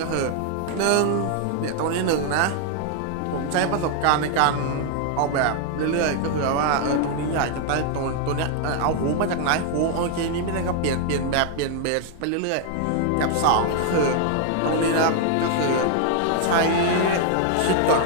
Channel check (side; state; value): both; different; correlation 0.00